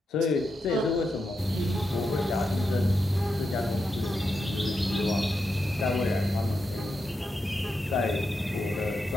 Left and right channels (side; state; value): both; normal; correlation 0.86